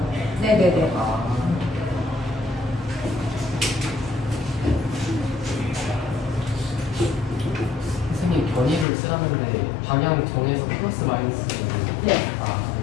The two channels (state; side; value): drops out; right; at 8.8 s